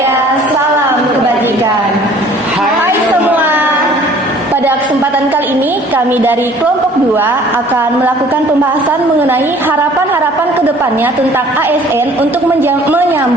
Salam Kebajikan. Hai semua. Pada kesempatan kali ini, kami dari kelompok 2 akan melakukan pembahasan mengenai harapan-harapan kedepannya tentang ASN untuk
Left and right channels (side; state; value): both; normal; correlation 0.53